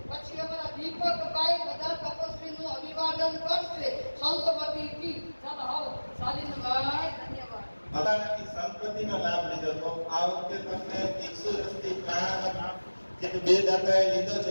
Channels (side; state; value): both; inverted; correlation -1.00